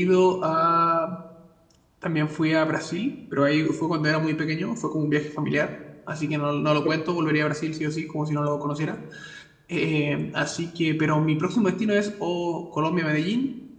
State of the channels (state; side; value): identical; both; correlation 1.00